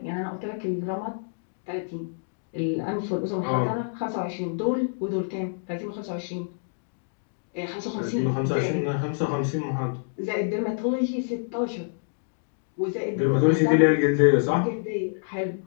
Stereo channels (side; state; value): right; silent; digital silence